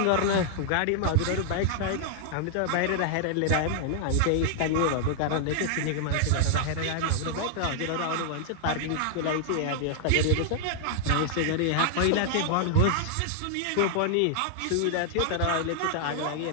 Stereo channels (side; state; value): both; different; correlation -0.01